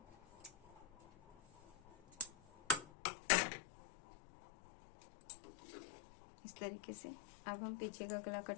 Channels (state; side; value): drops out; right; at 2.9 s